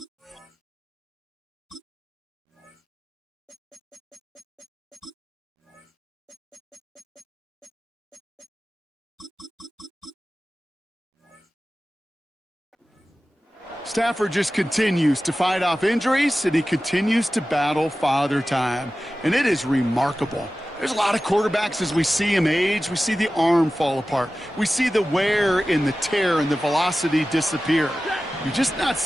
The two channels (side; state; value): both; normal; correlation 0.95